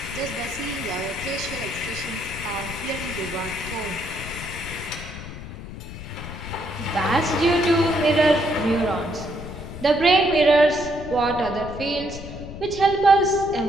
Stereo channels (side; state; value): left; noise; rumble, 11 dB below the sound